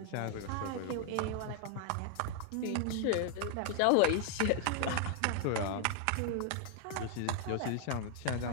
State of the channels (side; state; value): both; different; correlation 0.00